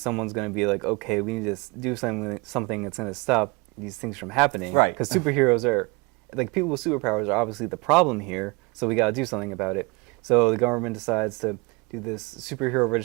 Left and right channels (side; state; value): left; quieter; 27.8 dB